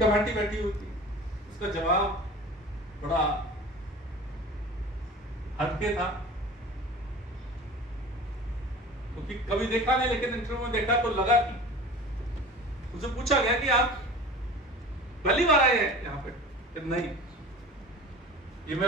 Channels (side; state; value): both; normal; correlation 0.38